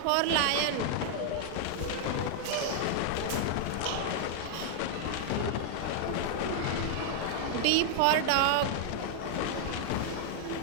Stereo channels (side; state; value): both; different; correlation 0.00